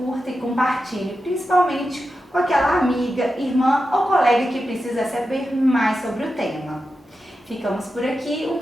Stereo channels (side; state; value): both; normal; correlation 0.90